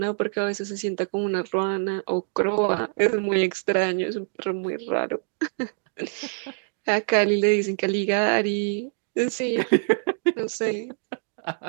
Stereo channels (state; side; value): silent; left; digital silence